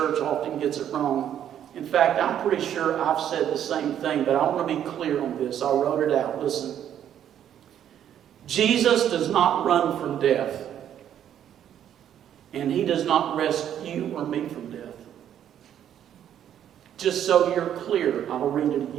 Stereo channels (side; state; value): left; quieter; 10.1 dB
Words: often gets it wrong. In fact, I'm pretty sure I've said the same thing, but I want to be clear on this. I wrote it out. Listen. Jesus does not run from death, and He does not rescue you or me from death. Just so you're clear, I'll read it